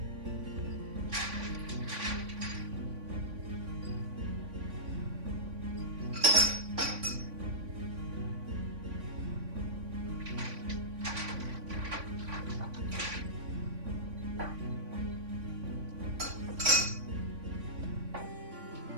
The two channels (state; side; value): late; left; 3.5 ms